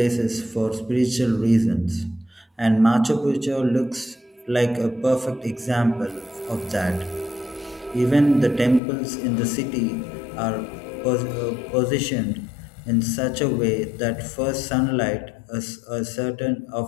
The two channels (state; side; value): drops out; right; at 8.8 s